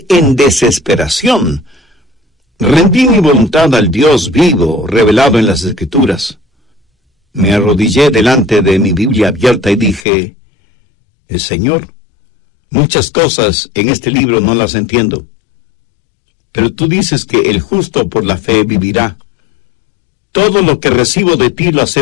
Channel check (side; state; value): right; drops out; at 10.1 s